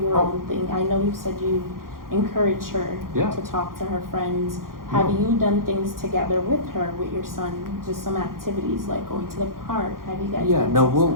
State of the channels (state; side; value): late; left; 0.91 ms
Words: her Oh. own thing? I know you said you encourage her Yeah. to talk to her friends. Have No. you done things together with her, with your son? Just some activities like going to the park. Have you guys? Yeah, done no, some